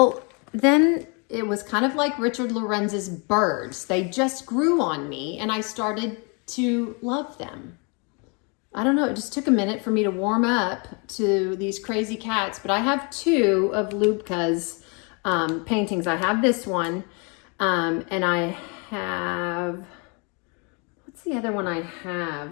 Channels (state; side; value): quieter; right; 33.5 dB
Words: then it was kind of like Richard Lorenz's birds. They just grew on me and I started to love them. I don't know, it just took a minute for me to warm up to these crazy cats, but I have 2 of Lubka's paintings. I have this one. And I have, what's the other one I